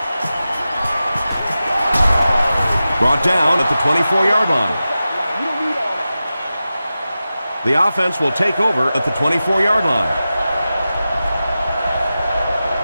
Brought down at the 24-yard line. The offense will take over at the 24-yard line.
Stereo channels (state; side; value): inverted; both; correlation -0.93